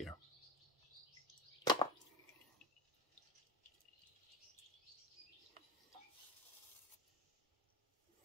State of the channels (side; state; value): both; normal; correlation 0.32